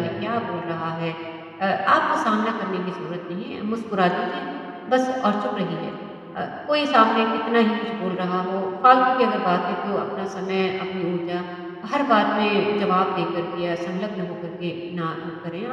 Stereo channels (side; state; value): both; identical; correlation 1.00